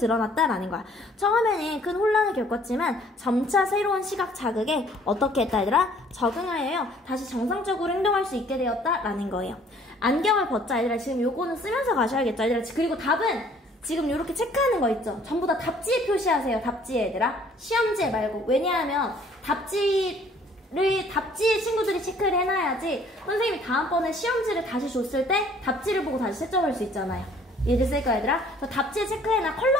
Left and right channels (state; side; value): normal; both; correlation 0.58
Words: 거야. 처음에는 큰 혼란을 겪었지만, 점차 새로운 시각 자극에 어떻게 했다, 얘들아? 적응하여요, 다시 정상적으로 행동할 수 있게 되었다라는 거예요. 안경을 벗자, 얘들아. 지금 요거는 쓰면서 가셔야겠죠, 얘들아. 그리고 답은 지금 이렇게 체크하는 거 있죠? 전부 다 답지에 표시하세요. 답지에, 얘들아. 시험지에 말고. 왜냐하면 답지에 친구들이 체크를 해놔야지 선생님이 다음번에 시험지를 다시 줬을 때 답지를 보고 다시 채점할 수 있잖아요. 이해됐을까, 얘들아? 답지에 체크해놔.